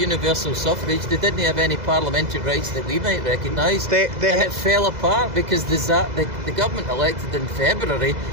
suffrage. They didn't have any parliamentary rights that we might recognise. And it fell apart because the government elected in February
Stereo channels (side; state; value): left; late; 2.0 ms